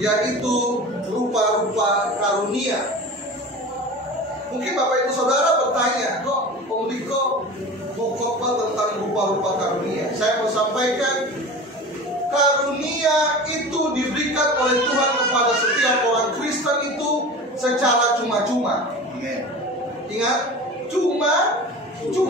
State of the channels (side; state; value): both; normal; correlation 0.34